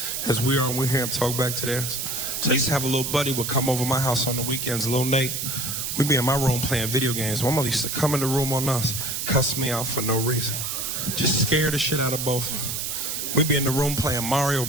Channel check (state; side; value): noise; right; hiss, 3 dB below the sound